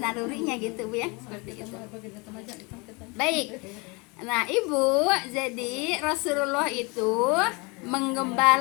nalurinya gitu Bu ya, seperti itu. Baik. Nah Ibu, jadi Rasulullah itu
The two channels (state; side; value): quieter; right; 28.4 dB